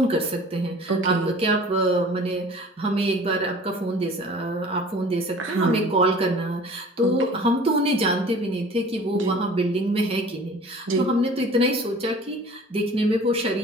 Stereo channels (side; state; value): both; normal; correlation 0.46